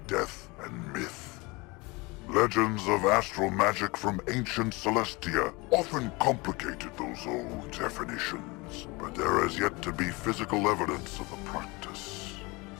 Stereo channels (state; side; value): quieter; right; 25.4 dB